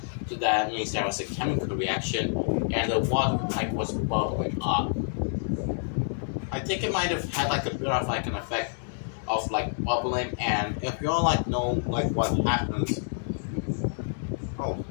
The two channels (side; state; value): right; silent; digital silence